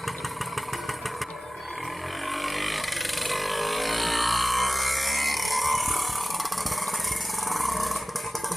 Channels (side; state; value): both; normal; correlation 0.96